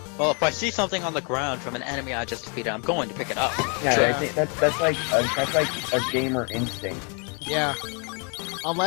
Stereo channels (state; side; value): quieter; right; 37.3 dB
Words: Well, if I see something on the ground from an enemy I just defeated, I'm going to pick it up. Yeah, Sure. I think that's like a gamer instinct. Yeah.